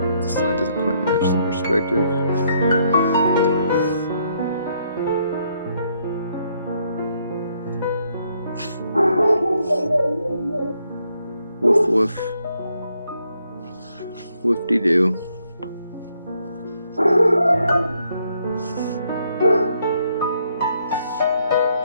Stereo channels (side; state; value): both; inverted; correlation -0.73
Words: This line doesn't quite match the perspective. Woof woof. Whoop-de-doo.